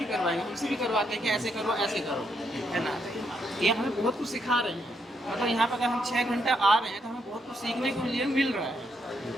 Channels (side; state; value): both; normal; correlation 0.77